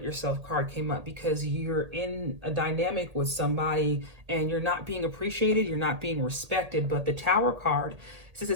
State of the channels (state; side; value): late; left; 1.8 ms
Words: yourself card came up, because you're in a dynamic with somebody and you're not being appreciated, you're not being respected. But the Tower card says